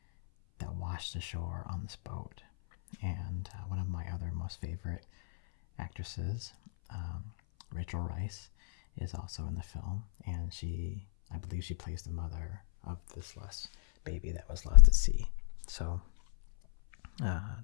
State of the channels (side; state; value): right; silent; 55 dB below the other